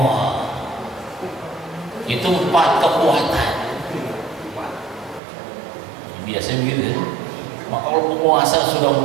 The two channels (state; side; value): drops out; left; at 5.2 s